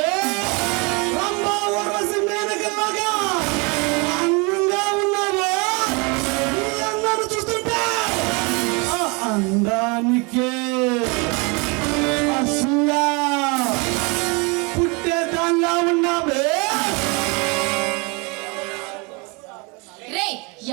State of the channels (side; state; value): left; quieter; 29.9 dB